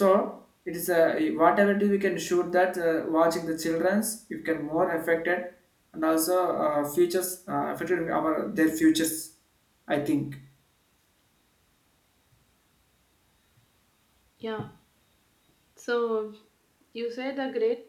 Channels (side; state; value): both; identical; correlation 1.00